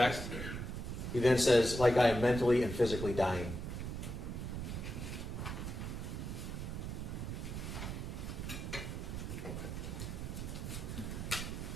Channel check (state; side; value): noise; right; rumble, 5 dB below the sound